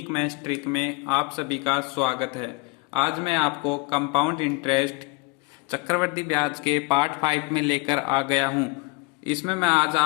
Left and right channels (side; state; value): right; quieter; 26.0 dB